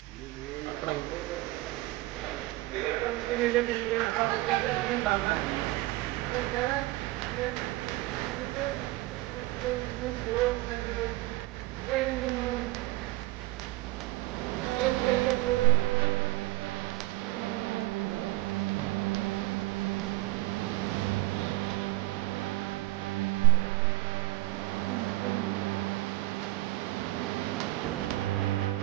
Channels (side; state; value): left; quieter; 19.6 dB